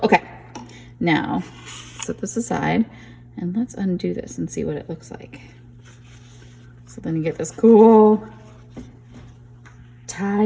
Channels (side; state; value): both; identical; correlation 1.00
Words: Okay, now set this aside and let's undo this and see what it looks like. So then you get this cool